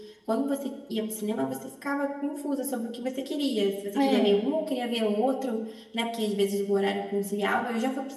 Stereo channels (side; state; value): both; identical; correlation 1.00